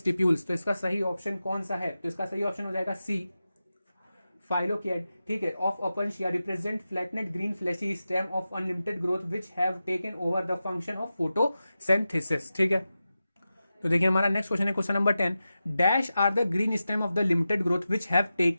तो इसका सही ऑप्शन कौन सा है? तो इसका सही ऑप्शन हो जाएगा सी, फाइलोकिएड। ठीक है, of Opuntia represent flattened green fleshy stem of unlimited growth which have taken over the function of photosynthesis. ठीक है, तो देखिए हमारा नेक्स्ट क्वेश्चन है question number 10, dash are the green stem of the limited growth which have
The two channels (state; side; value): inverted; both; correlation -0.92